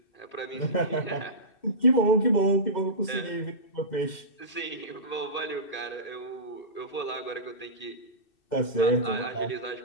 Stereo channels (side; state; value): right; late; 2.6 ms